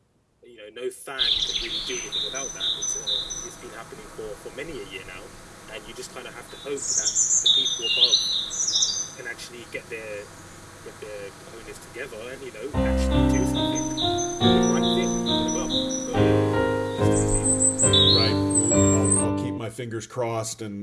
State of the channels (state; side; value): identical; both; correlation 1.00